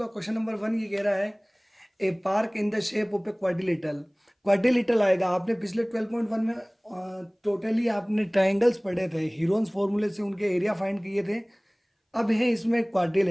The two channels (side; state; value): both; identical; correlation 1.00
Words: क्वेश्चन नंबर 1 ये कह रहा है a park in the shape of a quadrilateral. Quadrilateral आएगा। आपने पिछले 12.1 में टोटली आपने ट्राइंगल्स पढ़े थे, हीरोन्स फॉर्मूले से उनके एरिया फाइंड किए थे। अब है इसमें